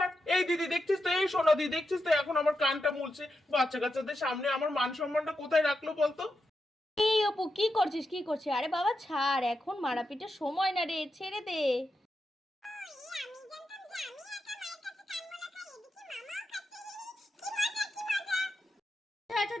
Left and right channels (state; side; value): normal; both; correlation 0.87